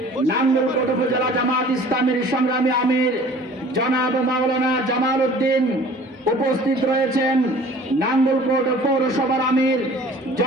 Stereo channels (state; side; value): normal; both; correlation 0.48